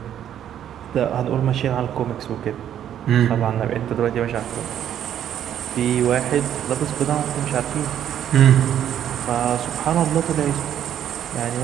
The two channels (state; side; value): quieter; left; 10.2 dB